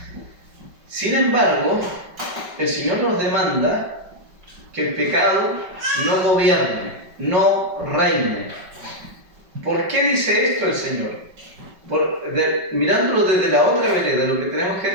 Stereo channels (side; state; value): left; late; 5.3 ms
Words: Sin embargo, el Señor nos demanda que el pecado no gobierne, no reine. ¿Por qué dice esto el Señor? Mirándolo desde la otra vereda, lo que tenemos que